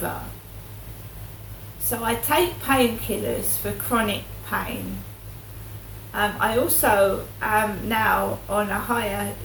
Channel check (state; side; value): identical; both; correlation 1.00